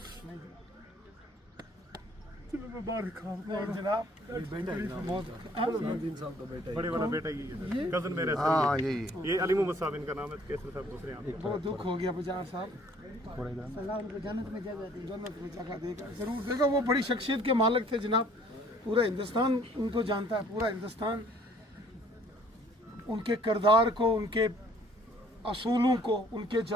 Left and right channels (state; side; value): normal; both; correlation 0.58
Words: नहीं चलो मैं बाहर खाऊं। नहीं जनाब, बहुत बड़े वाला बेटा ही है सर, कजन मेरे सर। हाँ यही ये अली मोहम्मद साहब इनका नाम है, केसर साहब दूसरे यहाँ। बहुत दुख हो गया बजार साहब। अल्लाह उनको जन्नत में जगह देगा, जरूर देगा। वो बड़ी शख्सियत के मालिक थे जनाब, पूरा हिंदुस्तान उनको जानता है, पूरा हिंदुस्तान उनके किरदार को, उनके असूलों को, उनके